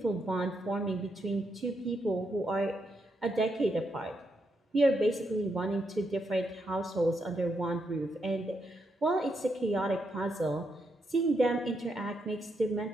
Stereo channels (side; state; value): both; normal; correlation 0.81